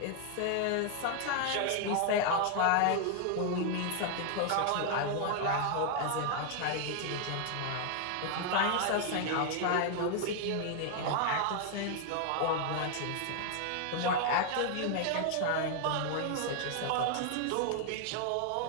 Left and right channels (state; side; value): different; both; correlation 0.00